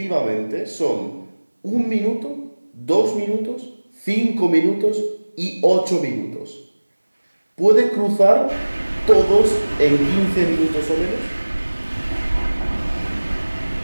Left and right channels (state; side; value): inverted; both; correlation -1.00